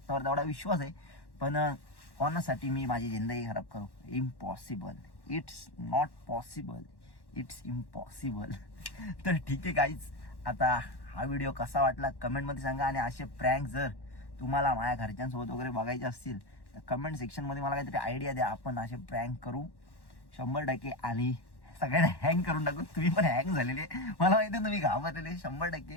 तेवढा विश्वास आहे. पण कोणासाठी मी माझी जिंदगी खराब करू. Impossible. It's not possible. It's impossible. तर ठीक आहे गाईज आता हा व्हिडिओ कसा वाटला कमेंटमध्ये सांगा. आणि असे प्रँक जर तुम्हाला माझ्या घरच्यांसोबत वगैरे बघायचे असतील तर कमेंट सेक्शनमध्ये मला काहीतरी आयडिया द्या. आपण असे प्रँक करू 100%. आणि सगळ्यांना हँग करून टाकू. तुम्ही पण हँग झालेले मला माहिती तुम्ही घाबरलेले 100%.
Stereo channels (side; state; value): right; late; 1.1 ms